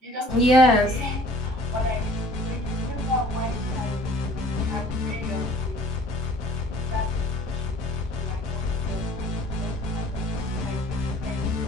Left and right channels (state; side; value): normal; both; correlation 0.52